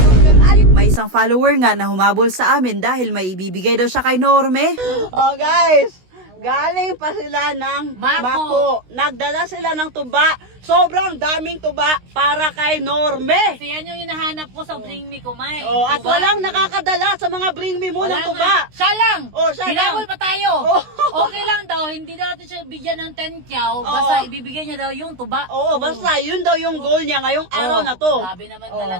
May isang follower nga na humabol sa amin dahil may ibibigay daw siya kay Norme. Oh guys, galing pa sila ng Mako. Nagdala sila ng tuba. Sobrang daming tuba para kay Norme. Kasi yan yung hinahanap ko sa Bring Me Kumay. Oh, at Tuba. walang nakakadala sa mga Bring Me mo ng tuba. Siya lang! Oh, siya lang. Hinabol pa tayo. Oh. Okay lang daw, hindi daw natin siya bigyan ng 10 kyaw. Basta ibibigay niya daw yung tuba. Oo, basta yun daw yung goal niya ngayong araw na to. Grabe naman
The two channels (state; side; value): late; left; 16 ms